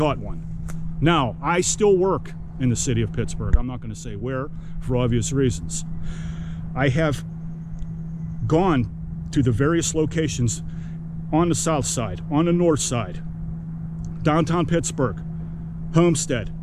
one. Now, I still work in the city of Pittsburgh. I'm not going to say where, for obvious reasons. I have gone to the various locations on the south side, on the north side, downtown Pittsburgh, Homestead,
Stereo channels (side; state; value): both; identical; correlation 1.00